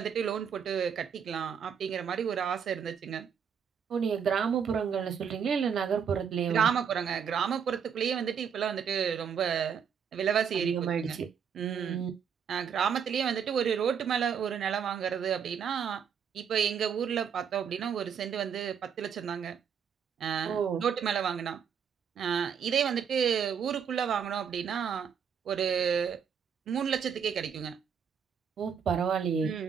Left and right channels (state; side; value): quieter; left; 7.4 dB